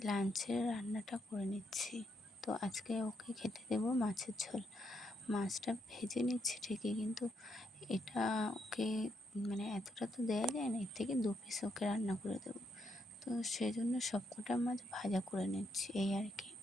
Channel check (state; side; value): normal; both; correlation 0.78